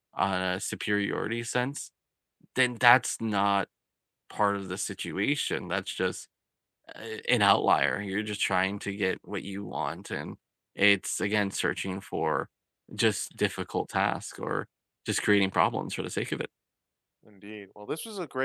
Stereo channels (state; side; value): identical; both; correlation 1.00